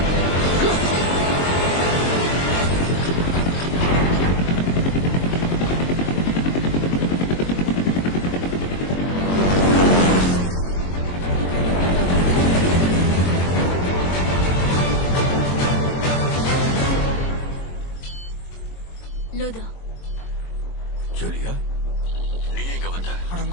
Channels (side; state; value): right; late; 22 ms